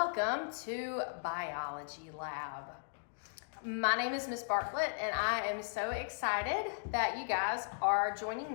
to Biology Lab. My name is Miss Bartlett, and I am so excited that you guys are joining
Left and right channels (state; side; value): silent; right; digital silence